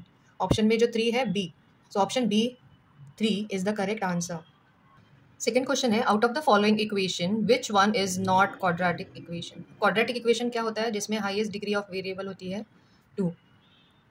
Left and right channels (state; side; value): identical; both; correlation 1.00